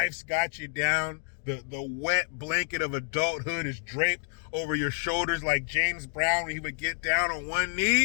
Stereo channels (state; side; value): silent; right; digital silence